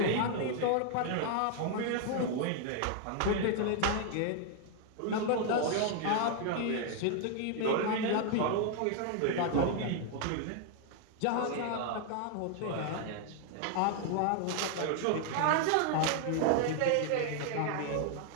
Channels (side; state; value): both; different; correlation 0.00